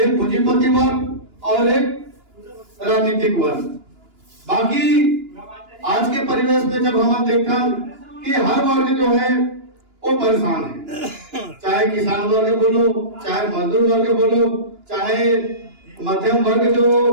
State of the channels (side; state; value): left; late; 2.9 ms